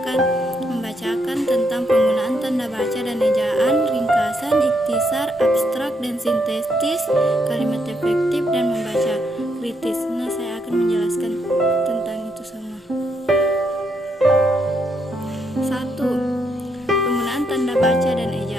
membacakan tentang penggunaan tanda baca dan ejaan, ringkasan, ikhtisar, abstrak, dan sintetis, kalimat efektif, dan membaca kritis. Nah, saya akan menjelaskan tentang itu semua. 1. Penggunaan tanda baca dan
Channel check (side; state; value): both; normal; correlation 0.77